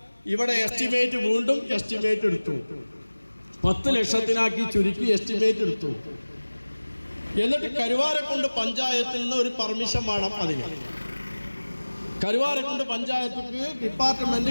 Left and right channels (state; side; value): inverted; both; correlation -1.00